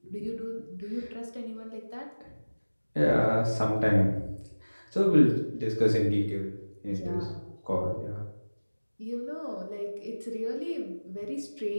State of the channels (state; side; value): inverted; both; correlation -1.00